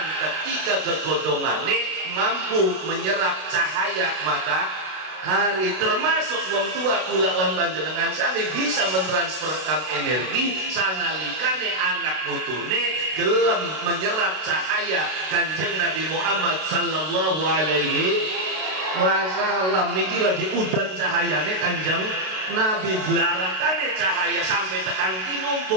Ketika kegodongane mampu menyerap cahaya matahari. Termasuk wong tua kula lan panjenengan sami bisa mentransferkan energi sanalikane anak putune gelem menyerap cahaya Kanjeng Nabi Muhammad sallallahu alaihi wasallam. Niki lagi udan cahayane Kanjeng Nabi, belarakane cahaya sampai tekan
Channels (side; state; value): left; late; 32 ms